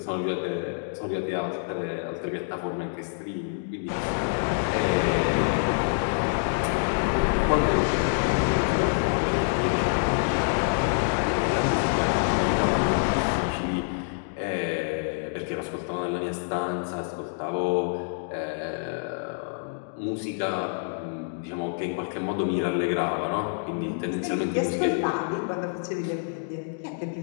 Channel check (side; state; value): right; silent; digital silence